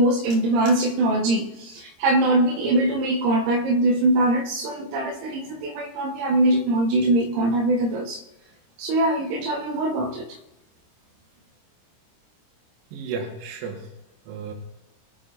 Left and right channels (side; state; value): left; late; 26 ms